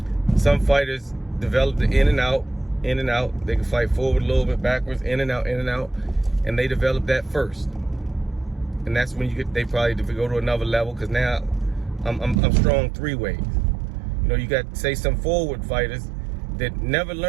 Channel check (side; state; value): left; drops out; at 12.4 s